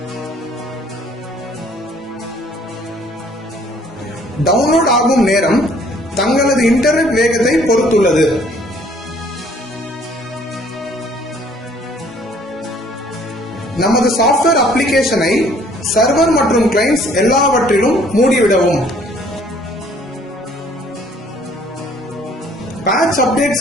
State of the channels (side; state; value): both; normal; correlation 0.59